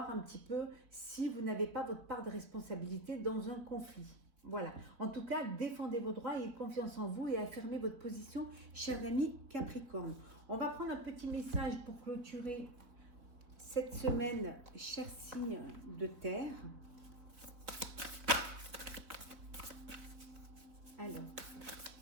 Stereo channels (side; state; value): left; late; 3.9 ms